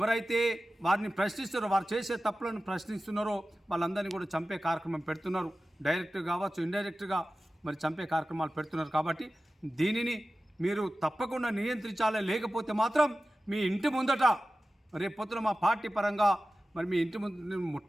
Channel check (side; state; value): both; normal; correlation 0.95